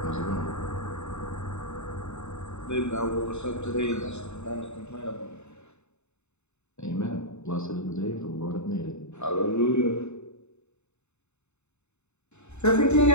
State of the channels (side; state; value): right; late; 0.82 ms